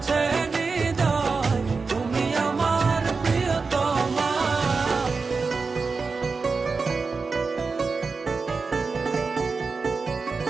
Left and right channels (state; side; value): quieter; left; 4.5 dB